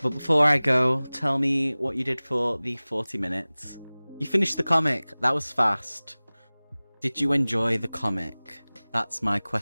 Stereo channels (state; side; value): inverted; both; correlation -1.00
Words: before I go, tell me what you did for the 40 minutes. You finished the comic. That was fast. Did you enjoy the comic? That's my